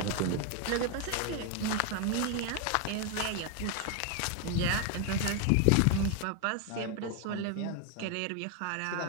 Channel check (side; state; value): both; different; correlation 0.01